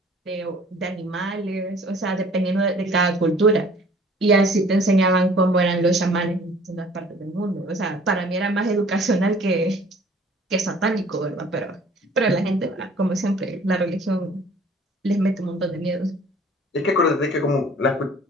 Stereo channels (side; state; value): both; normal; correlation 0.52